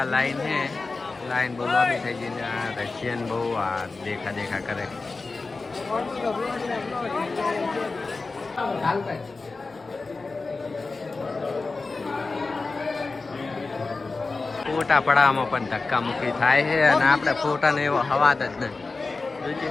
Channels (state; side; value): quieter; right; 3.8 dB